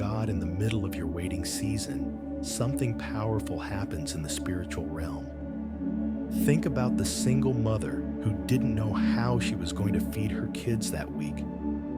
in the middle of your waiting season, something powerful happens in the spiritual realm. Think about the single mother who didn't know how she was going to feed her kids that week.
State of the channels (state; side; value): identical; both; correlation 1.00